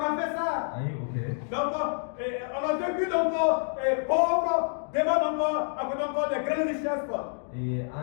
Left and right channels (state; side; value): silent; right; digital silence